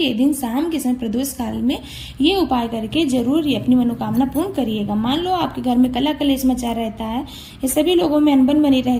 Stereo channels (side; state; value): both; identical; correlation 1.00